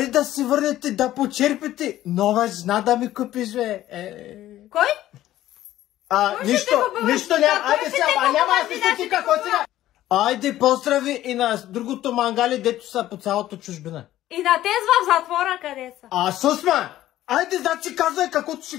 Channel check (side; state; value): right; quieter; 13.9 dB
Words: да си върнете, да почерпите. Нова жена да ми купиш, бе. Кой? Нищо няма. Айде сега, няма да си стати какво сега. Айде поздрави и на другото мангали, дето са по цялото чужбина. И на тез в затвора къде са? Сусма! Айде, значи казвай каквото